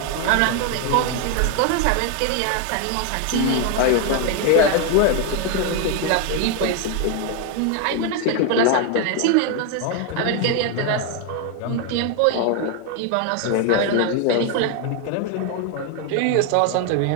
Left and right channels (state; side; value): different; both; correlation 0.01